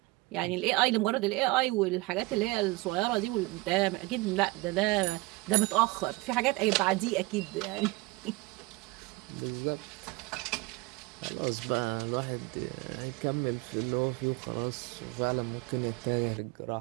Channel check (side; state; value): left; quieter; 22.3 dB